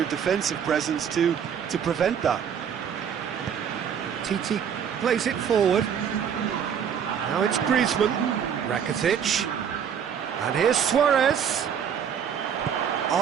defensive presence to prevent that. Titi plays it forward. Now it's Griezmann. Rakitic. And here's Suarez.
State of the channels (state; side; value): quieter; left; 8.0 dB